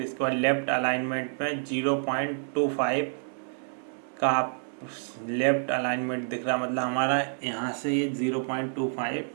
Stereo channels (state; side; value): silent; left; 59 dB below the other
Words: इसके बाद लेफ्ट अलाइनमेंट में 0.25 का लेफ्ट अलाइनमेंट दिख रहा, मतलब हमारा यहाँ से ये 0.25